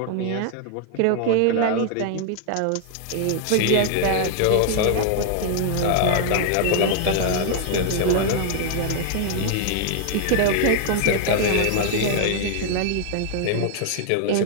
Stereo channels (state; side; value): different; both; correlation 0.00